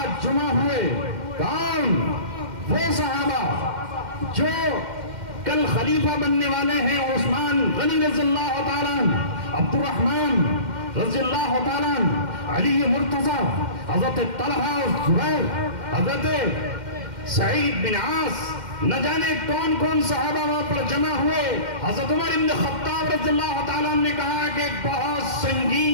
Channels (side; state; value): left; late; 2.1 ms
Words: جمع ہوئے، کون؟ وہ صحابہ جو کل خلیفہ بننے والے ہیں، عثمان غنی رضی اللہ تعالیٰ عنہ، عبد الرحمن رضی اللہ تعالیٰ عنہ، علی مرتضی، حضرت طلحہ اور زبیر، حضرت سعید بن عاص، نہ جانے کون کون صحابہ وہاں پر جمع ہوئے. حضرت عمر ابن خطاب رضی اللہ تعالیٰ عنہ نے کہا کہ ایک بہت